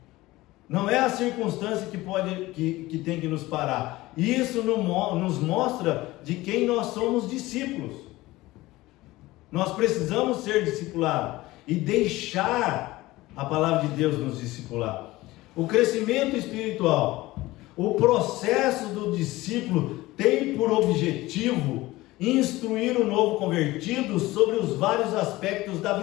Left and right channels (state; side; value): quieter; right; 18.7 dB